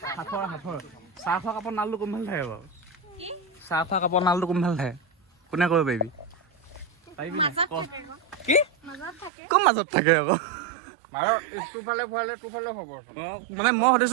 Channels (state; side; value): drops out; left; at 9.3 s